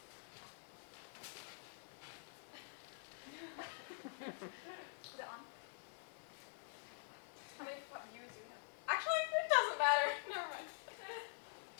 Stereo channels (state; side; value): silent; right; digital silence